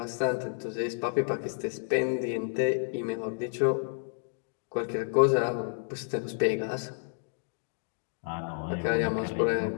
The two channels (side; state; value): right; silent; digital silence